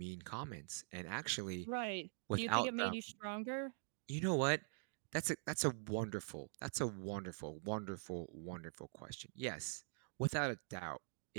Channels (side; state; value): left; silent; digital silence